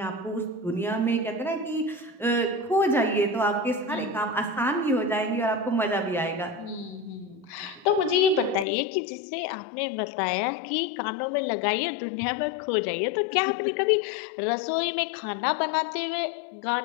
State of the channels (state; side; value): drops out; right; at 8.7 s